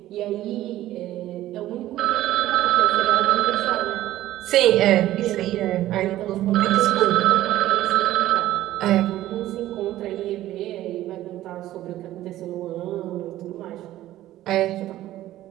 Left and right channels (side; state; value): left; quieter; 14.4 dB